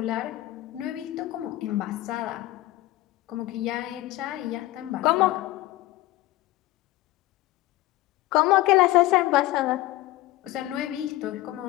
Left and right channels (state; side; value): quieter; right; 17.2 dB